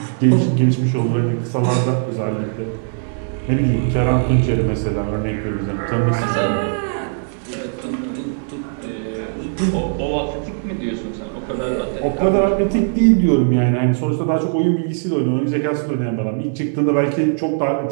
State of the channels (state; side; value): silent; left; digital silence